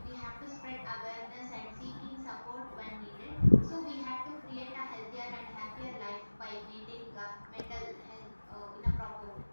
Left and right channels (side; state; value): both; inverted; correlation -1.00